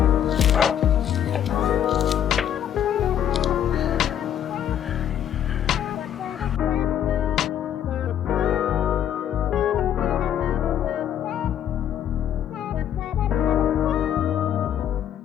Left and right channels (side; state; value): right; quieter; 10.0 dB